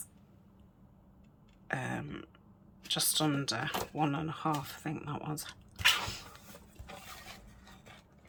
Just under 1.5, I think that was.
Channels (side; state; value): both; identical; correlation 1.00